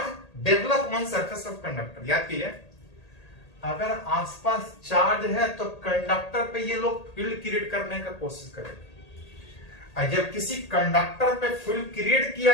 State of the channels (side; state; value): right; late; 1.8 ms